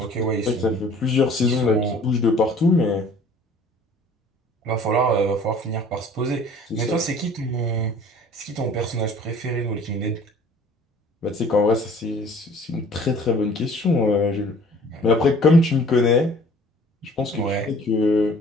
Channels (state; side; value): normal; both; correlation 0.51